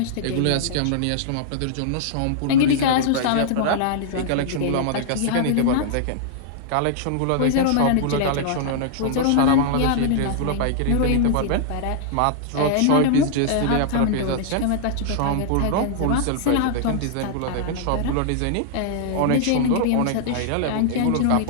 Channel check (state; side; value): different; both; correlation -0.01